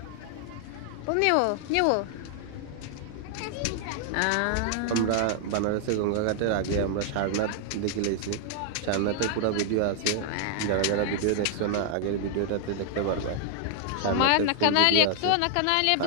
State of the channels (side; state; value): both; different; correlation 0.00